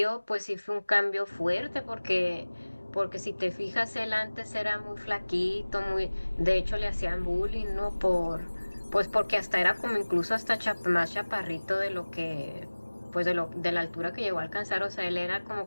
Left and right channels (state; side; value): inverted; both; correlation -1.00